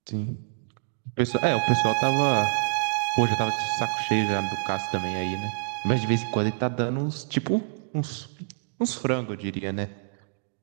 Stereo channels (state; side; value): silent; left; digital silence